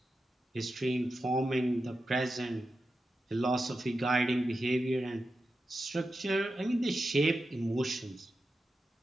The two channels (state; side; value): normal; both; correlation 0.90